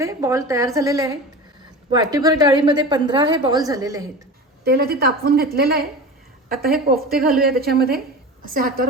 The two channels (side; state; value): both; normal; correlation 0.31